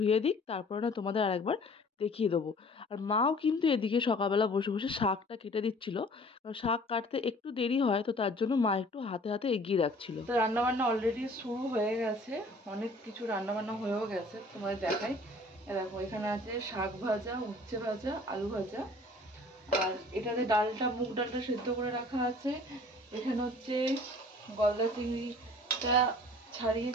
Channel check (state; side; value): normal; both; correlation 0.51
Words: দিক, তারপরে না তোমাদের আরেকবার দেখিয়ে দেবো। আর মাও কিন্তু এদিকে সকালবেলা বসে বসে শাকটা কেটে দিচ্ছিল, কারণ শাক কাটতে একটু দেরি হয়, তো তার জন্য মা একটু হাতে হাতে এগিয়ে রাখছিল। তো রান্নাবান্না অলরেডি শুরু হয়ে গেছে, অনেক কিছু রান্নাবান্না হয়েও গেছে, তোমাদের দেখাই। দেখো এখানে আছে শাক ভাজা, উচ্ছে ভাজা, আলু ভাজা, আর এটাতে ডালটা, মুগ ডালটা সেদ্ধ করে রাখা আছে। এখানে হচ্ছে গলদা চিংড়িটা